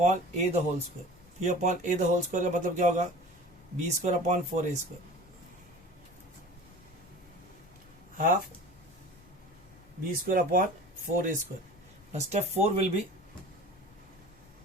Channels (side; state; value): left; noise; rumble, 25 dB below the sound